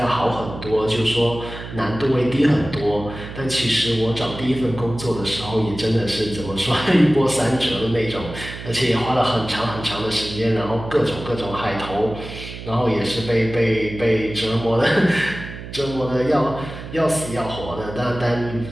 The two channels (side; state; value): right; noise; hum, 11 dB below the sound